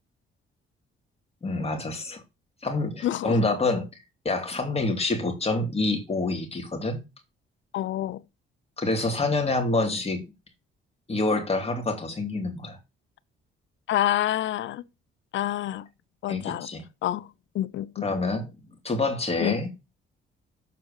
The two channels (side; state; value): right; quieter; 3.9 dB